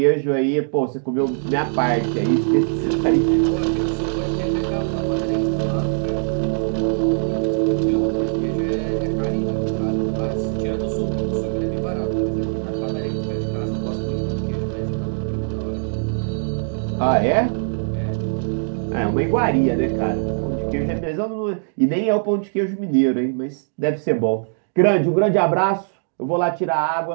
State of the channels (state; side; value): silent; left; digital silence